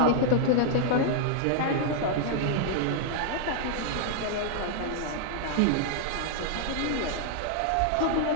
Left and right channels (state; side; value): different; both; correlation -0.01